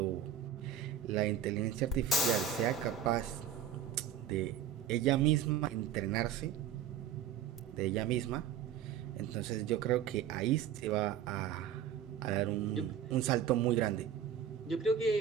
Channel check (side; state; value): left; quieter; 8.4 dB